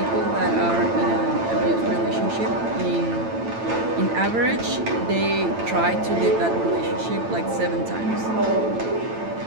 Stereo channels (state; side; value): late; left; 8.9 ms